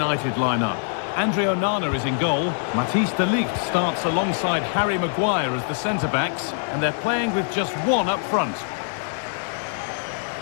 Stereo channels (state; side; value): silent; right; 63 dB below the other